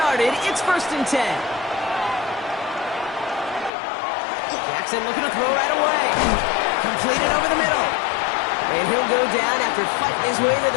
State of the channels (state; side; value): drops out; right; at 3.7 s